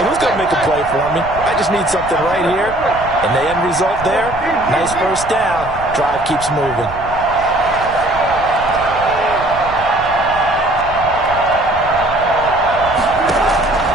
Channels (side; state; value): right; noise; rumble, 14 dB below the sound